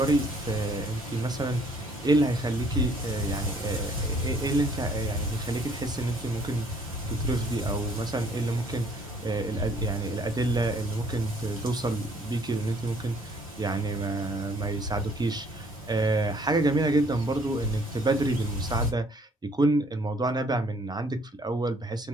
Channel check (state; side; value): normal; both; correlation 0.61